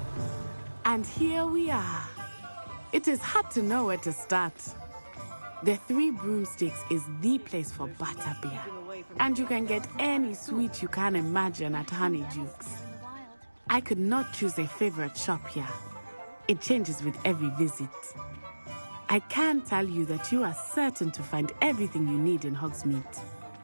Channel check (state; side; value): inverted; both; correlation -1.00